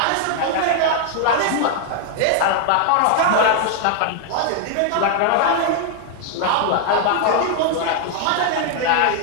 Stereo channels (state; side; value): different; both; correlation 0.00